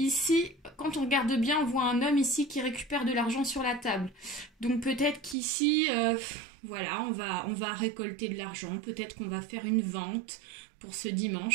quand on regarde bien, on voit un homme ici qui récupère de l'argent sur la table. Donc peut-être qu'ici, voilà, on va récolter de l'argent. Peut-être qu'on va faire une vente pour ce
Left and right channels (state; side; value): drops out; left; at 5.4 s